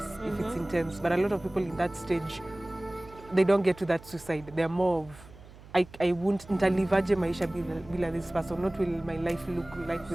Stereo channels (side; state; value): right; noise; hum, 20 dB below the sound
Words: if it's intense. But a lot of people in that stage, they don't get to that suicide. They're more of, I won't ntalivaje maisha bila this person. What will my life look like